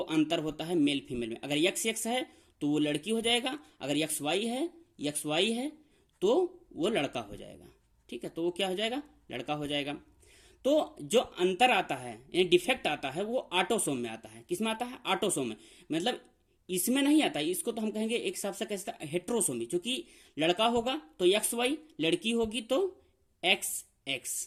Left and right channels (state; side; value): identical; both; correlation 1.00